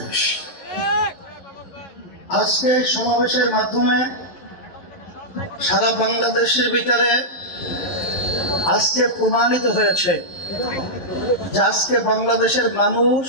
আজকে সমাবেশের মাধ্যমে সারা বাংলাদেশের ভিতরে আজকে প্রমাণিত হয়েছে যে আজকে বাংলাদেশের মানুষ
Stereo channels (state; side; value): late; right; 11 ms